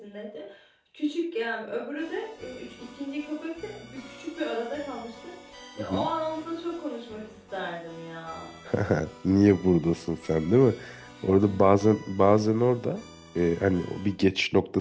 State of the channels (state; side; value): identical; both; correlation 1.00